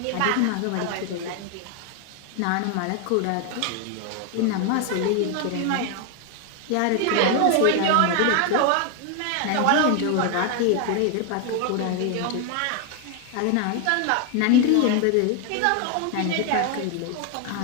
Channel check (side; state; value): both; different; correlation 0.01